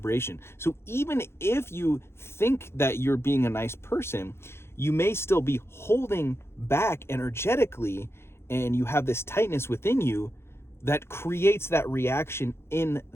So even if you think that you're being a nice person, you may still be holding back energetically, and you have this tightness within you that creates that reaction in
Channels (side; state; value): right; late; 0.12 ms